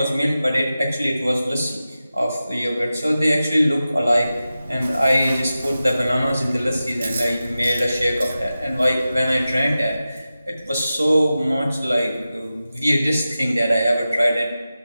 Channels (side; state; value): both; inverted; correlation -0.94